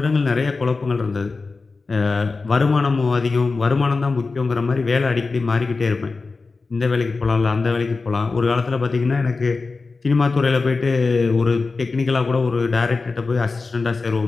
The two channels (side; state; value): right; quieter; 4.0 dB